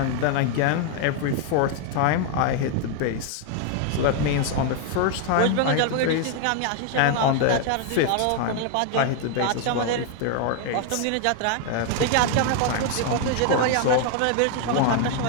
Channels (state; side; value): different; both; correlation 0.00